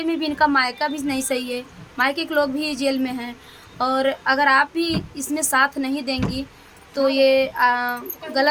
में भी, इनका मायका भी नहीं सही है, मायके के लोग भी जेल में हैं। और अगर आप भी इसमें साथ नहीं देंगी तो ये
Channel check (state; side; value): identical; both; correlation 1.00